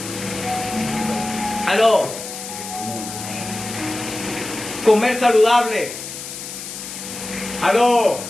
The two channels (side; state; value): left; noise; hiss, 9 dB below the sound